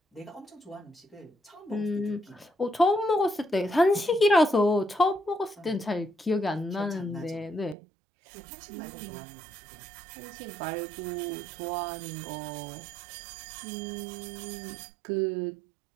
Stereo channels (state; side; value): drops out; left; at 7.8 s